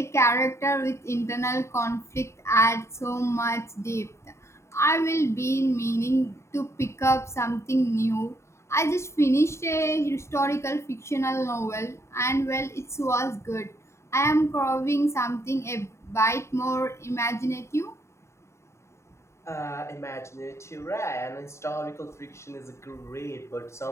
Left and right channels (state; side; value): late; right; 0.13 ms